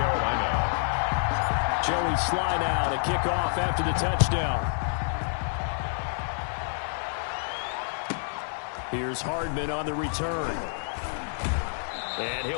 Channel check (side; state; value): right; silent; 59 dB below the other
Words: Joey Sly now to kick off after the touchdown. Here's Hardman on the return. And